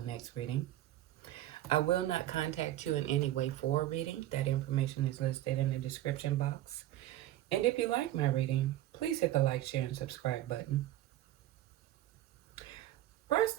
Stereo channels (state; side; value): quieter; left; 14.1 dB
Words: next reading. I will not contact you in any way for a reading. That information is listed in the description box. And if you like my reading, please hit the like, share, and subscribe button.